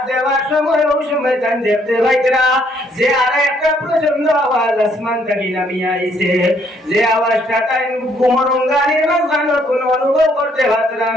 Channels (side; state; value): both; normal; correlation 0.68